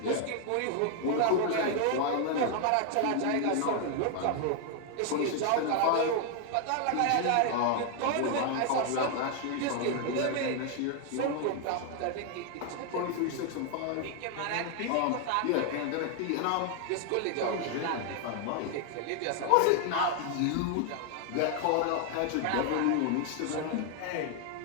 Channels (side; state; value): both; different; correlation 0.00